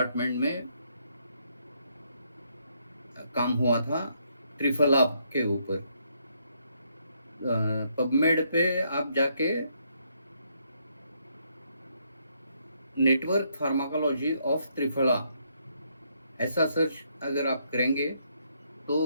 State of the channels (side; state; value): both; inverted; correlation -0.74